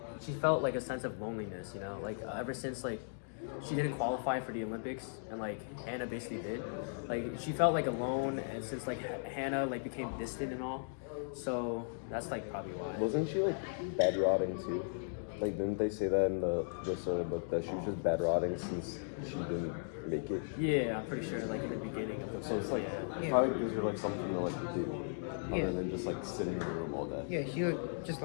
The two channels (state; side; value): silent; right; digital silence